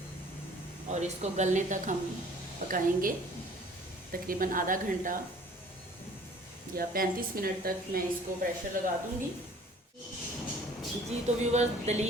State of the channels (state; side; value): normal; both; correlation 0.52